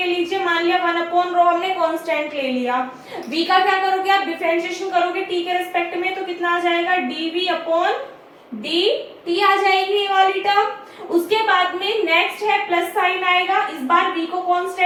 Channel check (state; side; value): identical; both; correlation 1.00